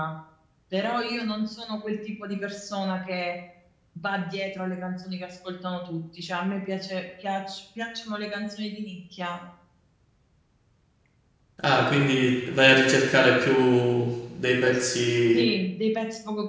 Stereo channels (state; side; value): identical; both; correlation 1.00